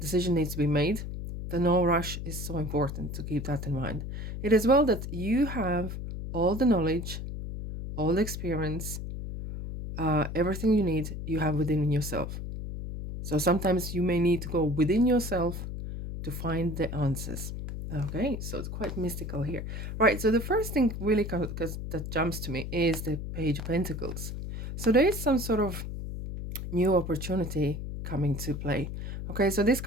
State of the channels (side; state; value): left; noise; hum, 6 dB below the sound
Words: needs to be made, the no rush is so important to keep that in mind. It is well that you have all the knowledge, all the experience, everything you need, you have within yourself. So sometimes you may need to go within yourself to find the answers. Okay, so it's quite mystical here. Right, so the first thing really that jumps to me is the Page of Pentacles. So there is some sort of new opportunity coming to play. Okay, so this